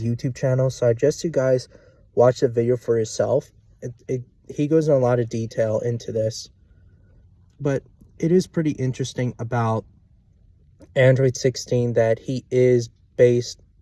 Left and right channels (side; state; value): both; identical; correlation 1.00